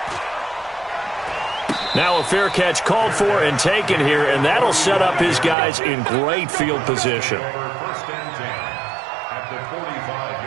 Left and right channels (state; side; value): drops out; left; at 5.6 s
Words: Now a fair catch called for and taken here, and that'll set up his guys in great field position. First and 10 at the